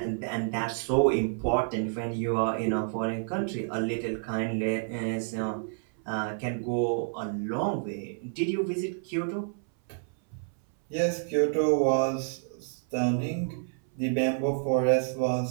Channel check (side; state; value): left; silent; 59 dB below the other